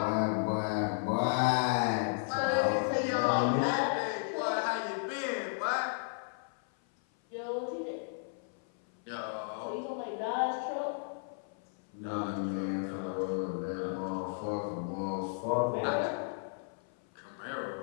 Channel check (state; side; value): silent; right; 55 dB below the other